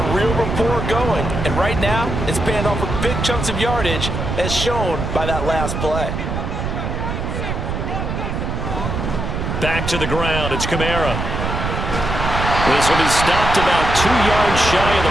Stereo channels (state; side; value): noise; right; rumble, 3 dB below the sound